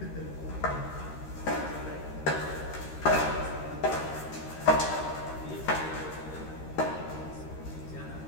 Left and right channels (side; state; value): right; late; 13 ms